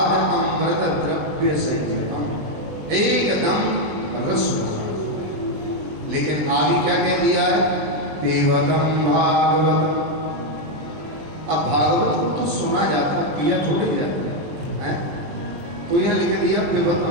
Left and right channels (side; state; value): left; late; 20 ms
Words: अमृत द्रव्य संयुतम, एकदम रस। लेकिन आगे क्या कह दिया है? देवतम भागवत। अब भागवत को तो सुना जाता है, पिया थोड़ी जाता है। तो यहां लिख दिया